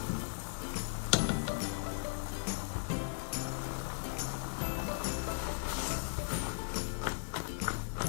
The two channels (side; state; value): right; silent; digital silence